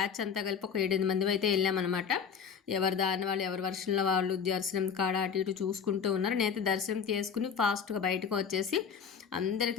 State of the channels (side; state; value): right; quieter; 6.8 dB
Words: అంతా కలిపి ఒక 7-8 మంది అయితే వెళ్ళామన్నమాట. ఎవరి దారిని వాళ్ళు, ఎవరి వర్షంలో వాళ్ళు దర్శనం కాడ అటు ఇటు చూసుకుంటూ ఉన్నారు. నేనైతే దర్శనం చేసుకుని ఫాస్ట్గా బయటకు వచ్చేసి